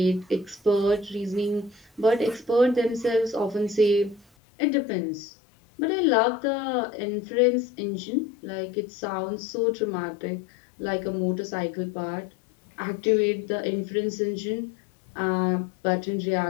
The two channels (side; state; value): right; drops out; at 4.2 s